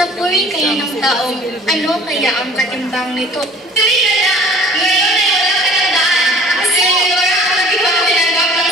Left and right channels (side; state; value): both; normal; correlation 0.48